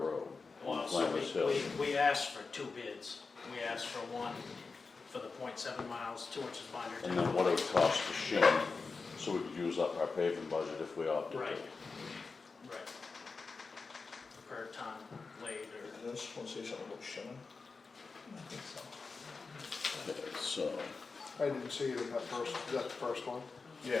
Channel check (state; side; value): quieter; right; 4.4 dB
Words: on Well, so Flanders Hill. we asked for 2 bids. We asked for one for the 0.7 miles, 2 inches binder. And then what it would cost to shim, so we could use up our paving budget if we opted Right, to. right. Per ton laid or. Does this one say something about shimming? I think so. Okay, so, I didn't see it in that first, is that the first one?